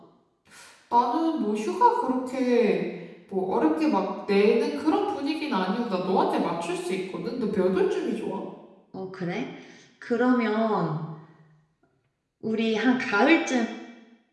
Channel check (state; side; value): identical; both; correlation 1.00